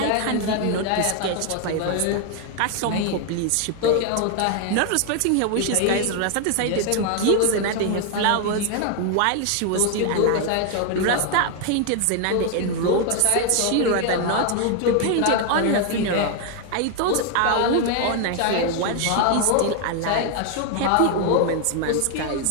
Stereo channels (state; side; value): different; both; correlation 0.00